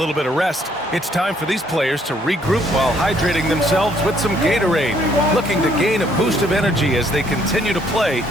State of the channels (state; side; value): normal; both; correlation 0.66